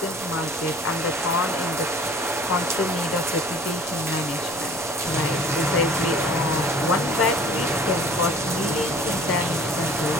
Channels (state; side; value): noise; right; rumble, 24 dB below the sound